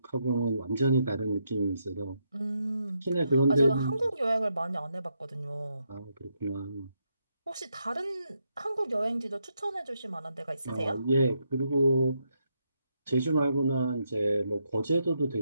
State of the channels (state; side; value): inverted; both; correlation -0.80